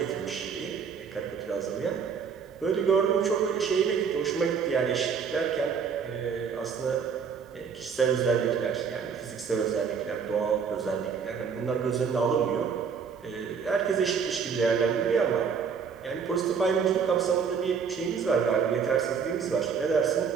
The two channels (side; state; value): left; quieter; 6.3 dB